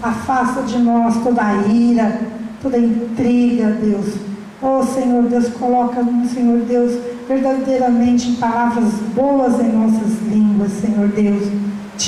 Afasta de nós toda a ira, toda a intriga, Deus. Oh Senhor Deus, coloca, Senhor Deus, verdadeiramente palavras boas em nossas línguas, Senhor Deus.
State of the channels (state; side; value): identical; both; correlation 1.00